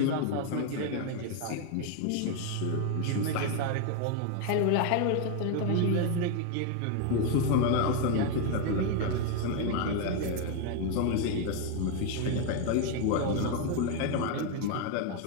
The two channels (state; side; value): different; both; correlation 0.01